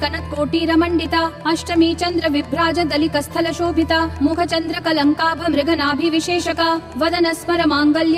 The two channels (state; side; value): identical; both; correlation 1.00